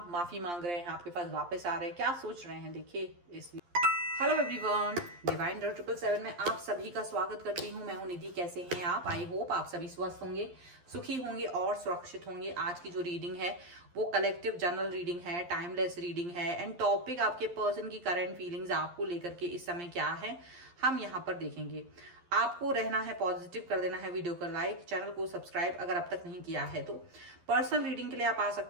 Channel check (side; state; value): left; late; 11 ms